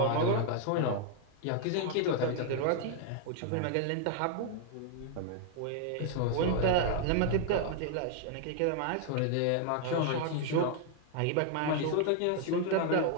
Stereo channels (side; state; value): both; different; correlation 0.00